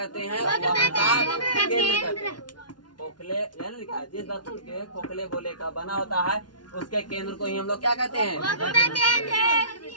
हैं? वक्रता केंद्र। खोखले लिखा है, जिस दर्पण के खोखले गोले का बना होता है उसके केंद्र को ही हम लोग क्या कहते हैं?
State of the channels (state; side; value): late; right; 0.70 ms